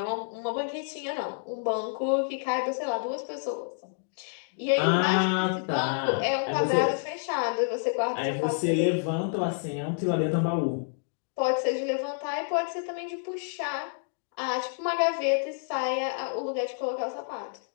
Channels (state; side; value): silent; right; digital silence